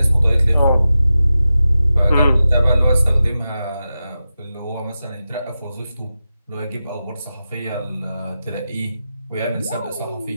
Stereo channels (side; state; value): both; inverted; correlation -0.92